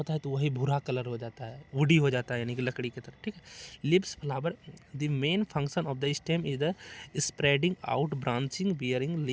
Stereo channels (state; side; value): identical; both; correlation 1.00